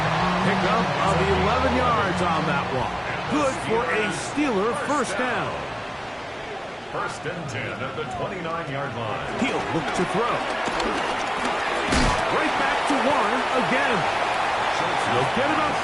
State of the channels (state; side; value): identical; both; correlation 1.00